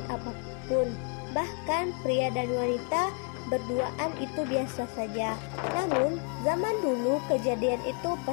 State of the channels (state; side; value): quieter; right; 38.2 dB